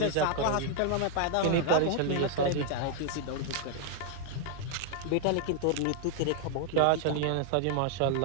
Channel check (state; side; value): different; both; correlation 0.00